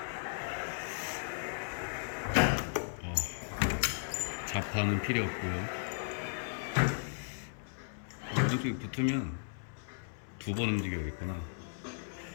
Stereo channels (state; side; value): silent; right; 54 dB below the other